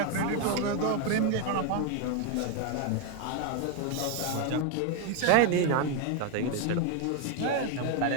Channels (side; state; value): both; different; correlation 0.01